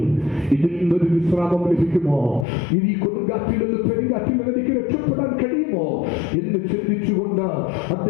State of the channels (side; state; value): right; drops out; at 2.5 s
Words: ഇതിൽ നിന്നൊരു വിശ്രാമം ലഭിക്കുമോ, ഈ കൊടുങ്കാറ്റിൽ നിന്ന് പെരുങ്കാറ്റിൽ നിന്ന് എനിക്ക് രക്ഷപ്പെടാൻ കഴിയുമോ എന്ന് ചിന്തിച്ചുകൊണ്ട്